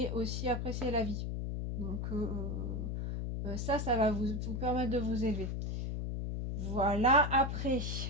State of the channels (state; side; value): noise; left; hum, 2 dB below the sound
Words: aussi apprécier la vie. Donc ça va vous permettre de vous élever. Voilà, après,